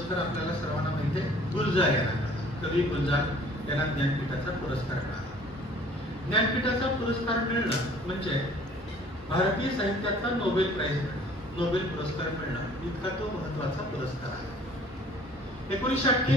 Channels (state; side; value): normal; both; correlation 0.53